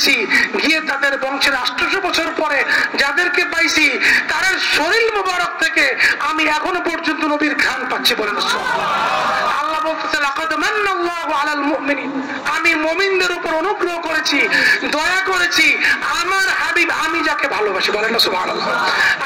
গিয়ে তাদের বংশের 800 বছর পরে যাদেরকে পাইছি তাদের শরীর মোবারক থেকে আমি এখনো পর্যন্ত নবীর ঘ্রাণ পাচ্ছি, বলেন না সুবহানাল্লাহ। আল্লাহ বলতেছে লাকাদ মান্নাল্লাহু আলাল মুমিনিন, আমি মুমিনদের উপর অনুগ্রহ করেছি, দয়া করেছি, আমার হাবিব আমি যাকে ভালোবাসি, বলেন না সুবহানাল্লাহ।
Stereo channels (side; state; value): both; identical; correlation 1.00